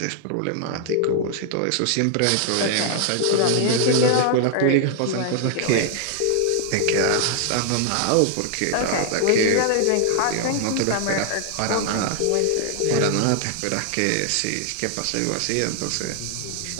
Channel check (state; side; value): different; both; correlation 0.00